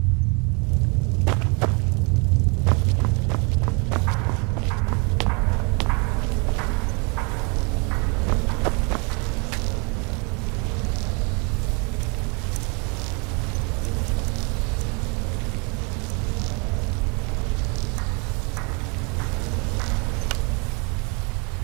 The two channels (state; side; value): quieter; left; 32.9 dB